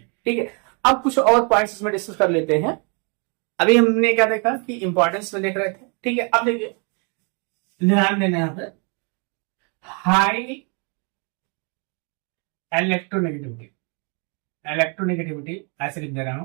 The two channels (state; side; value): quieter; left; 35.9 dB